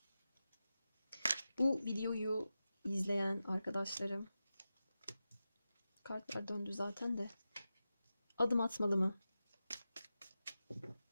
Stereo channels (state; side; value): inverted; both; correlation -0.93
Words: Bu videoyu izleyen arkadaşlarım, kartlar döndü zaten de, adım atmalı mı?